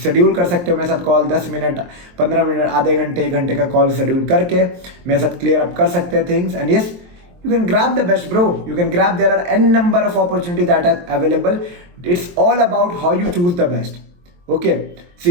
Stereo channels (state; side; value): late; left; 23 ms